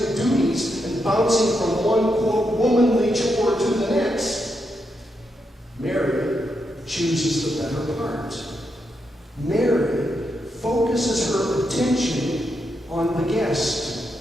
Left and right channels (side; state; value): both; normal; correlation 0.83